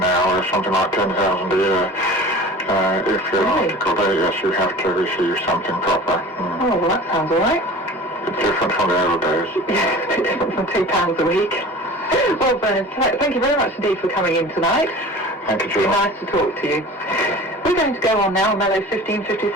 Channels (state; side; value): normal; both; correlation 0.40